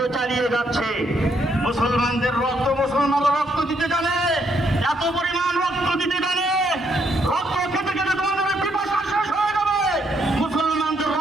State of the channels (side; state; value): both; normal; correlation 0.74